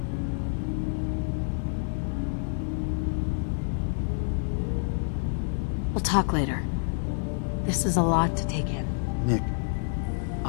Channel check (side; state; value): right; silent; 59 dB below the other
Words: We'll talk later. This is a lot to take in. Nick,